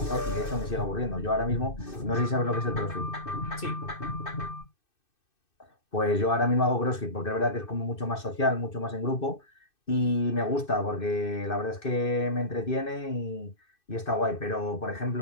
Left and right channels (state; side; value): late; right; 2.6 ms